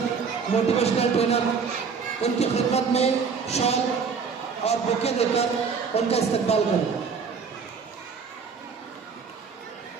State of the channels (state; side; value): quieter; left; 5.8 dB